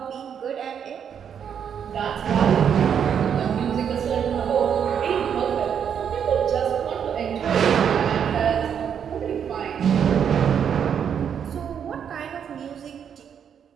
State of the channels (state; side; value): quieter; left; 8.0 dB